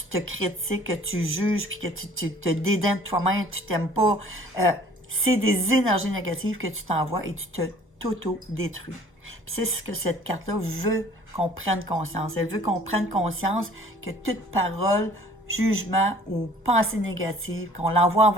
te critiques, que tu juges, puis que tu te dédaignes de toi-même, tu t'aimes pas, c'est des énergies négatives que tu t'envoies et tu t'auto-détruis. Puis c'est ce que cette carte-là veut qu'on prenne conscience. Elle veut qu'on prenne conscience que toute parole, jugement ou pensée négative, qu'on l'envoie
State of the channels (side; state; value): both; normal; correlation 0.52